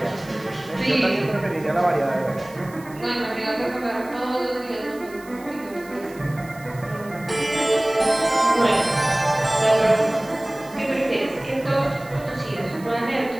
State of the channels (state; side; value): noise; right; hiss, 22 dB below the sound